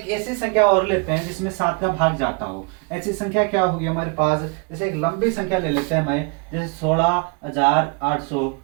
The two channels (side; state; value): left; quieter; 33.4 dB